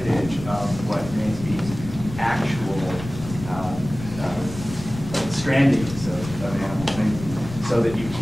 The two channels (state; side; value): noise; left; rumble, 11 dB below the sound